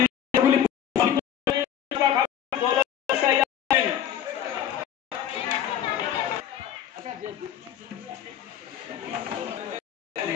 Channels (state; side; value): quieter; right; 10.0 dB